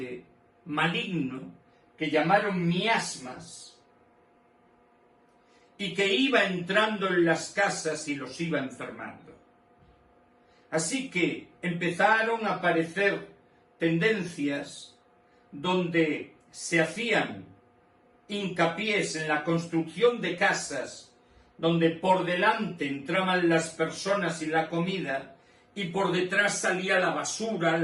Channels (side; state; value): both; identical; correlation 1.00